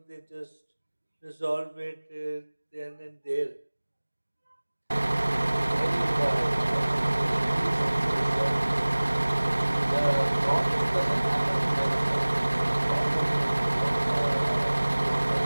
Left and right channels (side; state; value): both; inverted; correlation -1.00